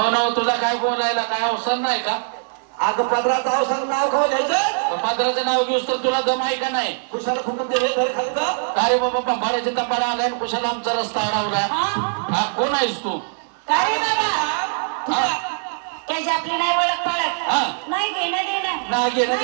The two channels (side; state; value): left; silent; digital silence